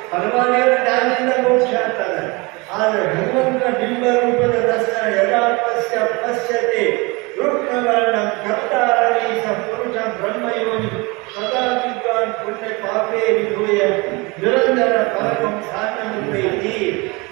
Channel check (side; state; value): left; quieter; 26.3 dB